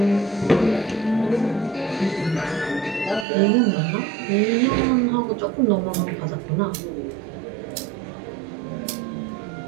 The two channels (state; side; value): drops out; left; at 3.2 s